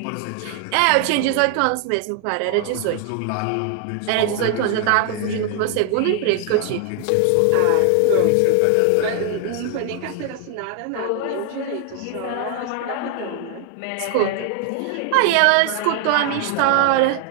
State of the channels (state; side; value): different; both; correlation 0.00